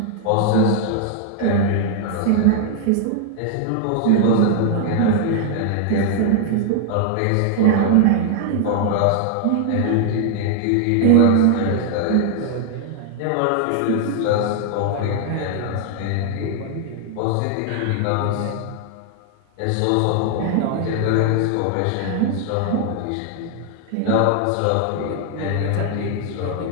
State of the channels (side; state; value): both; different; correlation 0.00